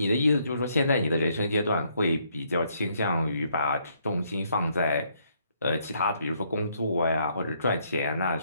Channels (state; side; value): inverted; both; correlation -0.71